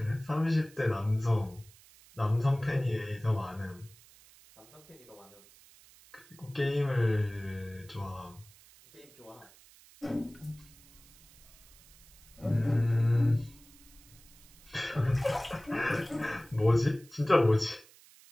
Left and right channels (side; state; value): right; noise; hiss, 24 dB below the sound